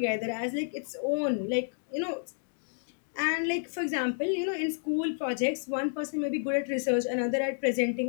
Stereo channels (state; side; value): silent; right; digital silence